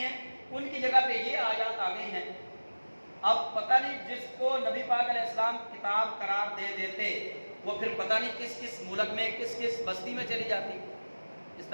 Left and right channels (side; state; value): both; inverted; correlation -1.00